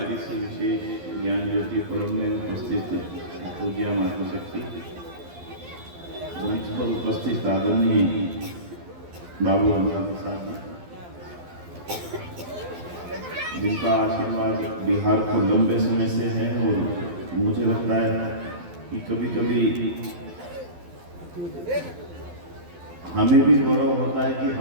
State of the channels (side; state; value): left; late; 12 ms